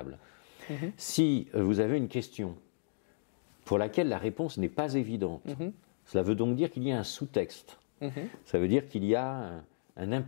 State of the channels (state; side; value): silent; right; digital silence